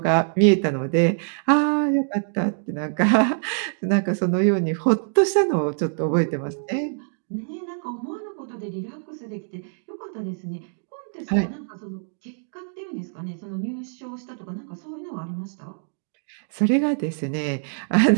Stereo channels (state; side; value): silent; left; digital silence